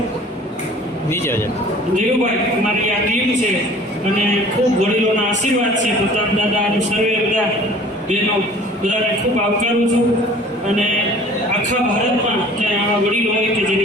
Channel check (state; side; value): normal; both; correlation 0.48